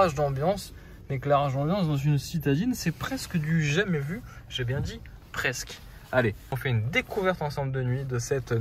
d'ambiance. L'éclairage d'ambiance dans une citadine, c'est presque du jamais vu. J'ai bien dit presque. Allez, on fait une découverte ensemble de nuit de cette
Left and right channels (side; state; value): both; identical; correlation 1.00